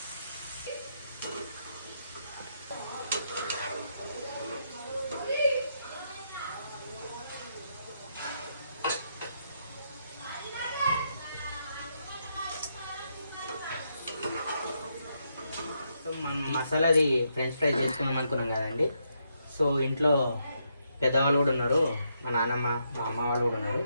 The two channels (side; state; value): both; inverted; correlation -0.79